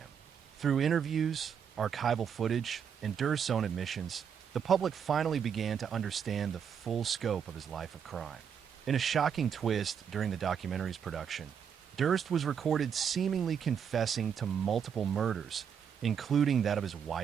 Through interviews, archival footage, and Durst's own admissions, the public finally began to understand the full scope of his life of crime. In a shocking twist during the documentary's production, Durst was recorded seemingly confessing to multiple murders, including that of his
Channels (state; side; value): quieter; left; 7.6 dB